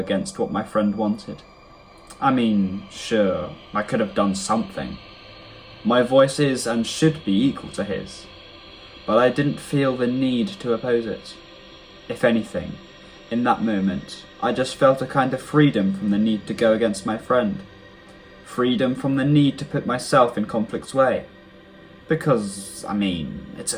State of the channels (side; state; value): both; identical; correlation 1.00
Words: what my friend wanted. I mean, sure, I could have done something. My voice is and should be equal to his, but I didn't feel the need to oppose it. If anything, in that moment, I just felt a kind of freedom from the need to go against my friend. Freedom from the need to put myself in conflict's way. Because, I mean, it's